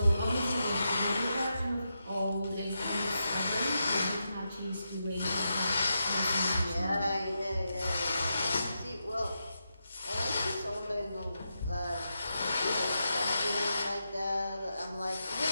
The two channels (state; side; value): inverted; both; correlation -0.86